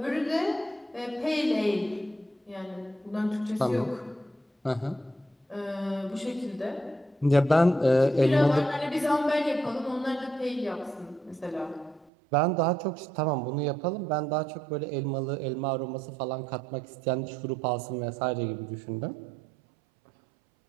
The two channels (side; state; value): left; drops out; at 12.1 s